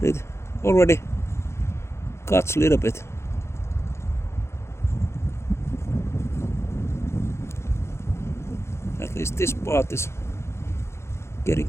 It already cuts a little bit. At least this part is getting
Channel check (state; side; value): late; right; 0.13 ms